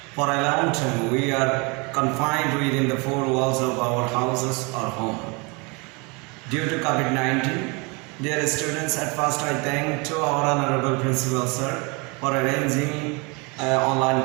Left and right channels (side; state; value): left; quieter; 29.2 dB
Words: for a long time we are confined within the four walls of our houses or home. Due to COVID-19, dear students, at first I thank to our Honorable Principal Sir for arranging online